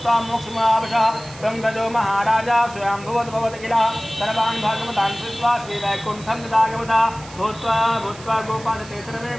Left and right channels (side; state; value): right; noise; hiss, 18 dB below the sound